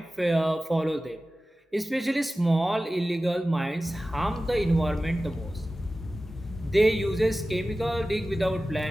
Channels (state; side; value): normal; both; correlation 0.95